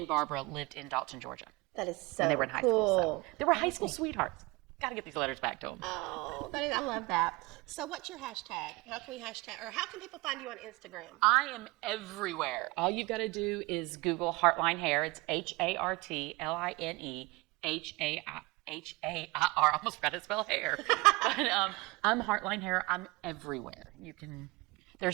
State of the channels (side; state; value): left; quieter; 23.9 dB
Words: Barbara lived in Dalton, Georgia. That is so when they were in high school. So they were high school sweethearts. Got to get these letters back to them. Oh, I love that. So what's your hashtag? How can we hashtag, or how can people find you on Instagram? I am everywhere. All you've got to do is Google Hartline Hair. It's HARTLINE HAIR. I almost forgot to spell hair. But I'm Hartline Hair. I'm everywhere.